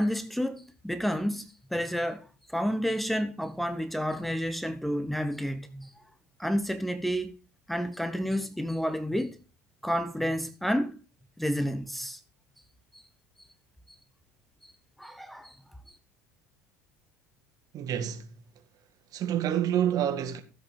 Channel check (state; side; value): normal; both; correlation 0.85